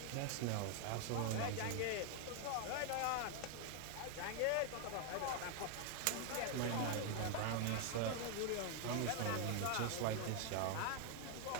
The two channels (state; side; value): different; both; correlation 0.00